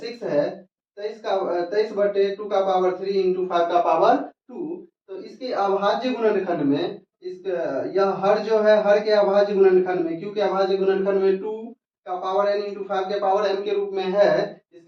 है 23/2 का पावर 3 इंटू 5 का पावर 2। तो इसके अभाज्य गुणनखंड में यह हर जो है, हर के अभाज्य गुणनखंड में, क्योंकि अभाज्य गुणनखंड में 2 का पावर n इंटू 5 के पावर m के रूप में है,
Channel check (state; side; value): identical; both; correlation 1.00